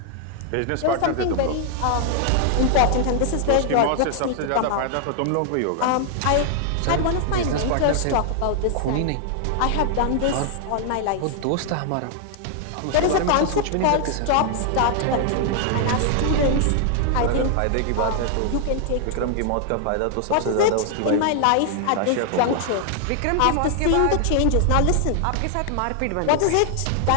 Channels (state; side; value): different; both; correlation 0.00